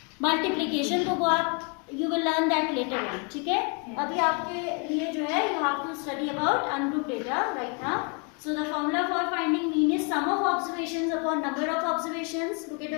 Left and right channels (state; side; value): quieter; right; 35.9 dB